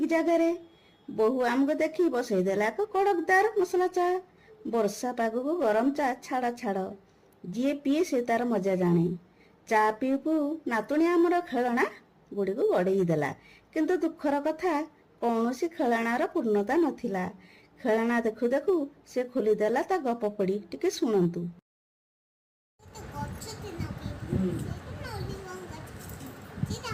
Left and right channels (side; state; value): both; identical; correlation 1.00